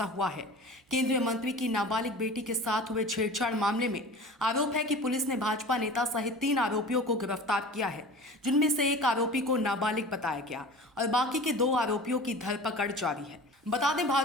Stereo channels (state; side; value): normal; both; correlation 0.38